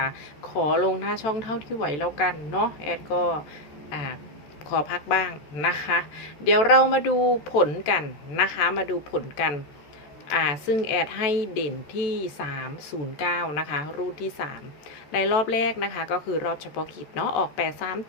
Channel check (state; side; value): late; right; 14 ms